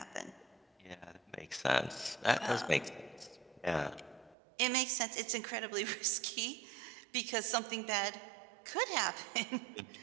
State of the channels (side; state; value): left; drops out; at 4.4 s